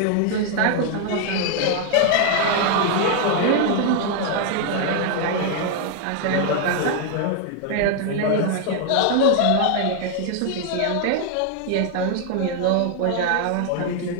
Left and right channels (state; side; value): different; both; correlation 0.00